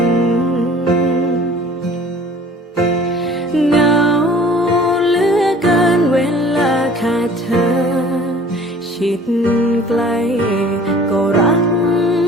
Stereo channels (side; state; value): both; normal; correlation 0.48